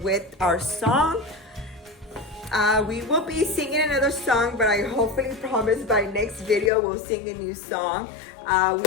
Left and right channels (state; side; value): drops out; right; at 6.7 s